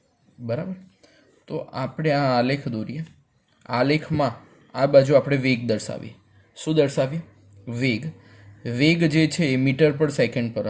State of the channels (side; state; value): both; identical; correlation 1.00